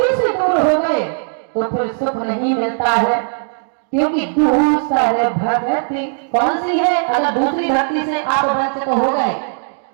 से दूर हो गए तो फिर सुख नहीं मिलता है, क्योंकि दूसरी भक्ति कौन सी है? अगर दूसरी भक्ति से आप वंचित हो गए,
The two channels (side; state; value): left; silent; digital silence